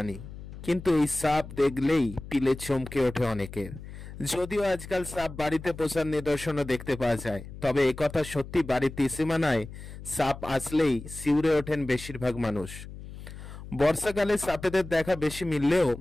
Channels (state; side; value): noise; left; hum, 13 dB below the sound